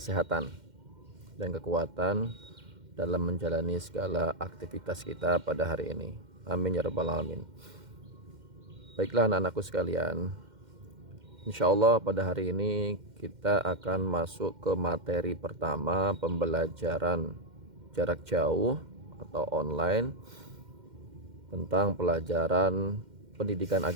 dan kekuatan dalam menjalani segala aktivitas kita pada hari ini. Amin ya rabbal alamin. Baiklah anak-anakku sekalian, insya Allah pada hari ini kita akan masuk ke materi pertama, pembelajaran jarak jauh atau online tentang pelajaran pendidikan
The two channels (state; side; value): late; left; 2.1 ms